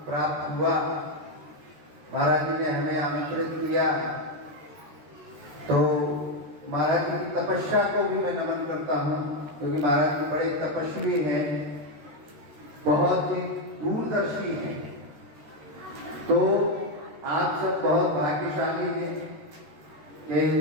प्राप्त हुआ। महाराज जी ने हमें आमंत्रित किया तो महाराज जी की तपस्या को भी मैं नमन करता हूँ, क्योंकि महाराज जी बड़े तपस्वी हैं, बहुत ही दूरदर्शी हैं। तो आप सब बहुत भाग्यशाली हैं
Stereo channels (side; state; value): left; late; 13 ms